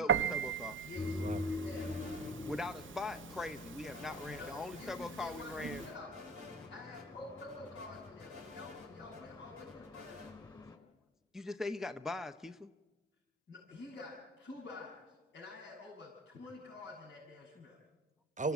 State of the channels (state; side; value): normal; both; correlation 0.39